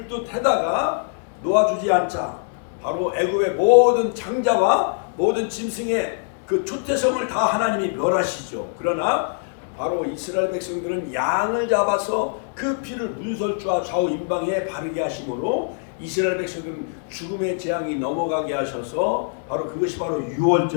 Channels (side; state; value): right; silent; 63 dB below the other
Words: 듯 해다가 놓아주지 않자 바로 애굽의 모든 장자와 모든 짐승의 그 초태성을 다 하나님이 멸하시죠. 그러나 바로 이스라엘 백성들은 양을 잡아서 그 피를 문설주와 좌우 임방에 바르게 하심으로 이스라엘 백성들은 죽음의 재앙이 넘어가게 하셔서 바로 그것이 바로